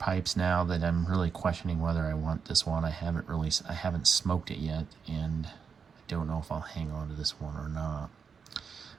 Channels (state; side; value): quieter; left; 6.2 dB